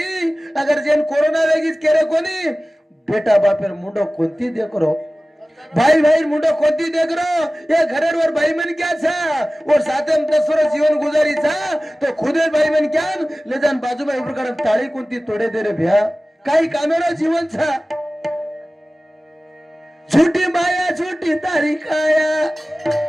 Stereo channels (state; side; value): normal; both; correlation 0.97